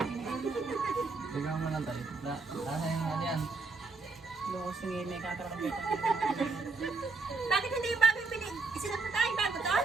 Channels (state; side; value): quieter; left; 4.0 dB